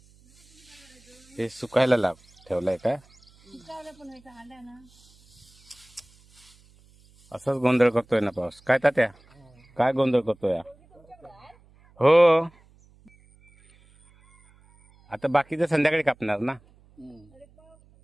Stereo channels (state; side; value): noise; right; hum, 29 dB below the sound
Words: हे सुकायला लाभ ठेवलाय का? असंच गोंधळ करतोय ना पाऊस. काय तात्या, काय गोंधळ करतोय? हो, आता बाकीचं संध्याकाळी कापणार ना.